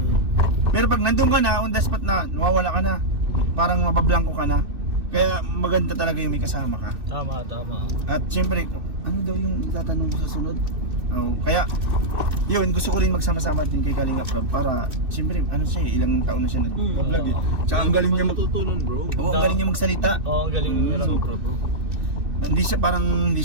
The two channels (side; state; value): left; late; 2.6 ms